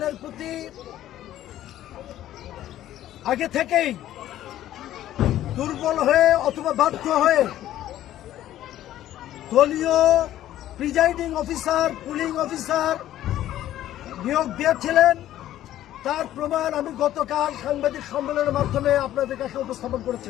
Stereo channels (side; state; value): right; quieter; 13.0 dB